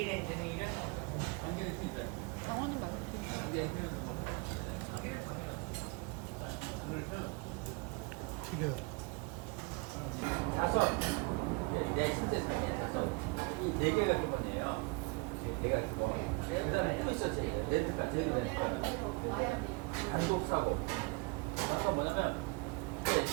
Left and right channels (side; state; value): left; quieter; 27.6 dB